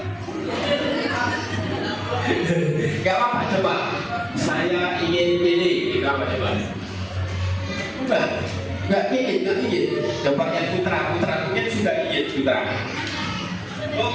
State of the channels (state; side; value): identical; both; correlation 1.00